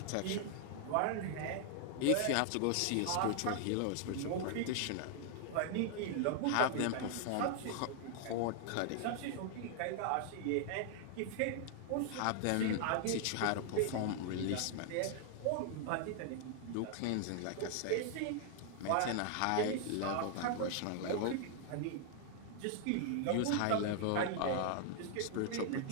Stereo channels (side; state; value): both; different; correlation 0.00